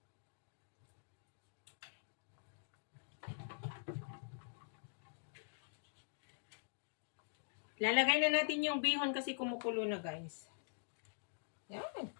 Lalagay na natin yung bihon kasi kumukulo na, guys. Yan.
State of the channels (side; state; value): right; silent; digital silence